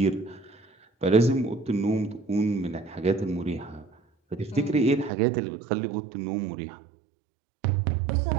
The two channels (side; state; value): left; drops out; at 5.1 s